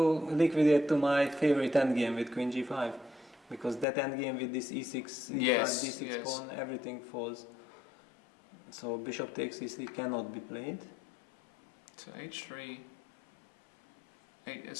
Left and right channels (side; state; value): right; drops out; at 3.9 s